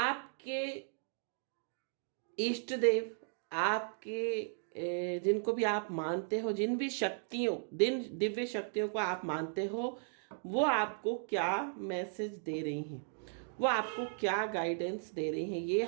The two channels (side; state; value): left; silent; digital silence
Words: इष्ट देव, आपके जिनको भी आप मानते हो, जिन भी शक्तियों, दिव्य शक्तियों को आप मानते हो, वो आपको क्या मैसेज दे रही हैं, वो आपको क्या गाइडेंस दे रही हैं, ये